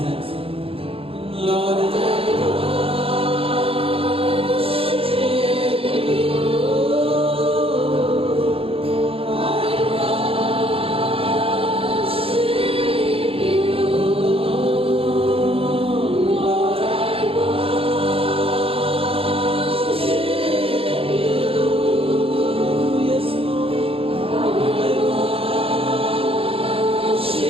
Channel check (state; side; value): late; left; 0.27 ms